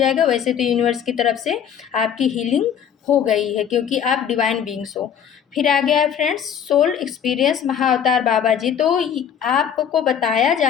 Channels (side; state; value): right; quieter; 8.5 dB